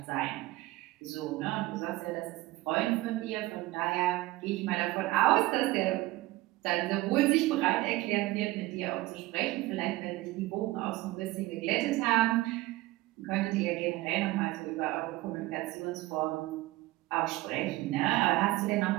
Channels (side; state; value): left; quieter; 18.6 dB